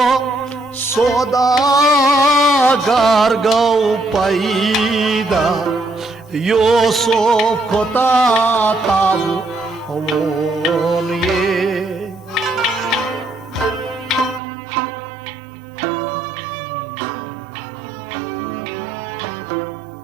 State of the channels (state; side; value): drops out; left; at 14.4 s